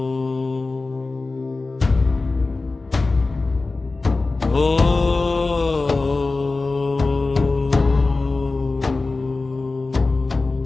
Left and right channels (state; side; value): quieter; right; 3.6 dB